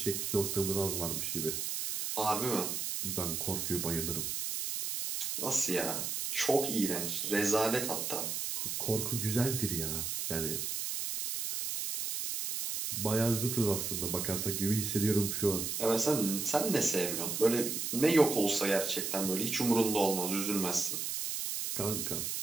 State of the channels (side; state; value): right; noise; hiss, 2 dB below the sound